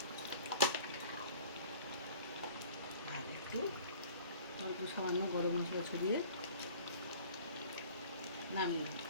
আর একটু অল্প সামান্য গরম মশলা ছড়িয়ে নামিয়ে দেবো।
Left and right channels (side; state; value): both; inverted; correlation -0.47